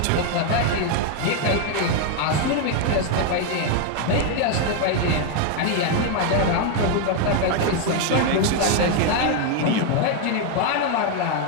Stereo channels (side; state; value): both; different; correlation 0.01